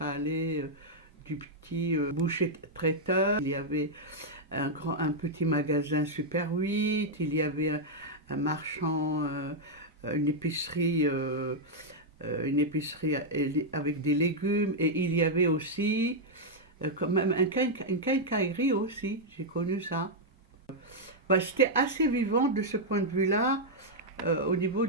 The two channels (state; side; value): normal; both; correlation -0.03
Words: allait du petit boucher traiteur, il y avait un petit magasin Super 8, il y avait un marchand, une épicerie avec des légumes, et il y avait aussi quand même une quincaillerie aussi, j'ai connu ça. C'était assez vivant de ce point de vue-là au niveau